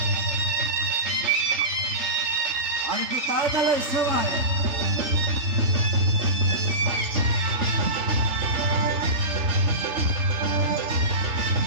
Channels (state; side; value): late; left; 3.3 ms